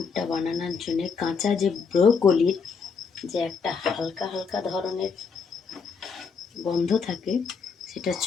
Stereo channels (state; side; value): quieter; right; 5.5 dB